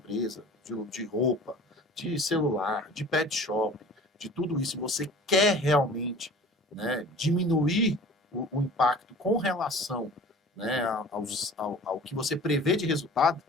de roupa, de celular, de pet shop, de tudo isso, e você quer realmente, né, diminuir o impacto com relação, né, ao que você prevê de resultado,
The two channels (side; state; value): both; normal; correlation 0.44